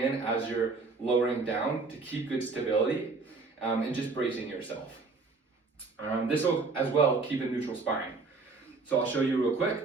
as you're lowering down to keep good stability, and just bracing yourself. This will as well keep a neutral spine. So I'll show you real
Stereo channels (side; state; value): left; quieter; 4.1 dB